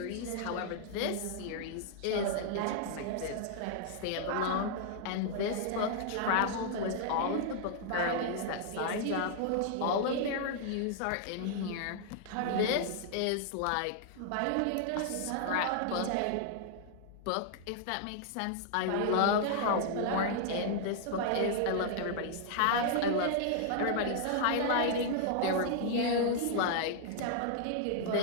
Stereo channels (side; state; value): both; different; correlation -0.01